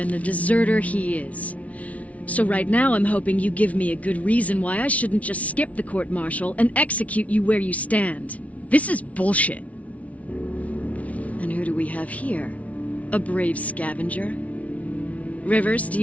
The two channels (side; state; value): right; late; 0.067 ms